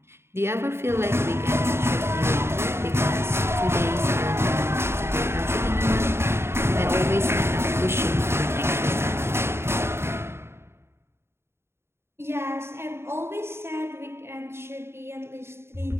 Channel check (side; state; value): left; late; 0.12 ms